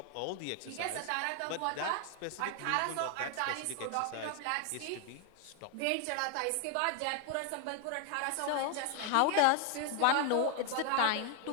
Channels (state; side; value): different; both; correlation 0.00